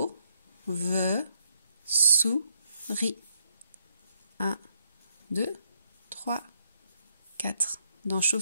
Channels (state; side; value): inverted; both; correlation -0.73